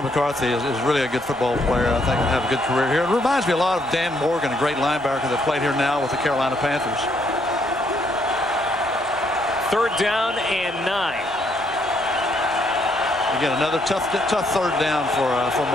McCarthy is really a good football player. I think he'll have a good career here. It reminds me a lot of Dan Morgan, a great linebacker that played here now with the Carolina Panthers. 3rd down and 9. Again, another tough 3rd down for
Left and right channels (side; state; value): both; normal; correlation 0.72